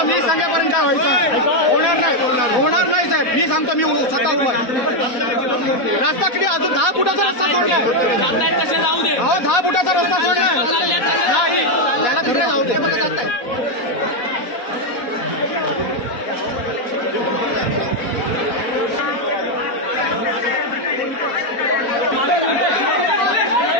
मी सांगेपर्यंत काय व्हायचं होणार नाही, होणार नाही साहेब. मी सांगतो, मी स्वतः उभा आहे. रस्ता किती अजून 10 फुटाचा रस्ता सोडलाय, अहो 10 फुटाचा रस्ता सोडलाय, त्याला तिकडे जाऊ दे. मला जात आहे.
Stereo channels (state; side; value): late; right; 4.1 ms